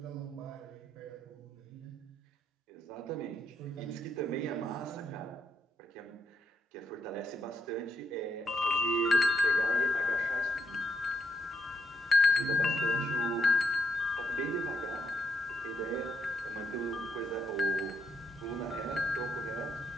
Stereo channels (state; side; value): normal; both; correlation 0.77